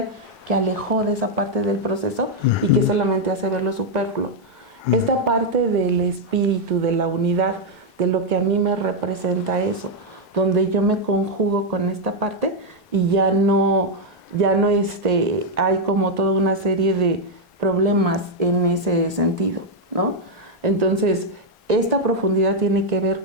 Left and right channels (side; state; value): both; normal; correlation -0.01